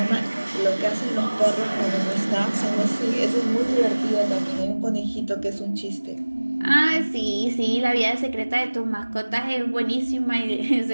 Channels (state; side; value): inverted; both; correlation -1.00